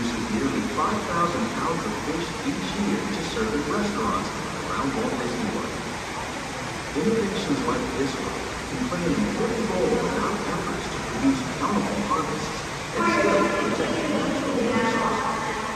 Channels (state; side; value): identical; both; correlation 1.00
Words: nearly 5,000 pounds of fish each year to serve in restaurants around Walt Disney World. Innovations like this one can play an important role in our efforts to produce bountiful harvests and still protect natural resources.